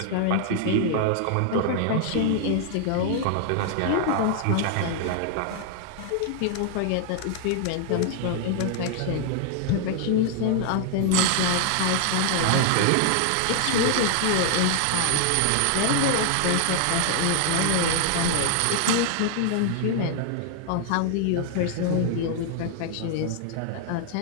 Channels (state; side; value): different; both; correlation 0.00